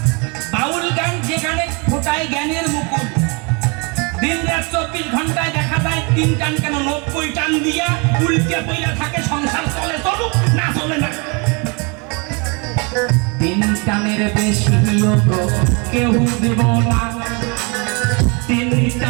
বাউল গান যেখানে ফোটায় জ্ঞানের মুকুল। দিন রাত 24 ঘন্টায় দেখা যায় 3 টান কেন 90 টান দিয়া উল্টে পইরা থাকে, সংসার চলে চলুক না চলে না। 3 টানের বেশি কেউ দেব না, 3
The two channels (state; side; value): quieter; left; 31.7 dB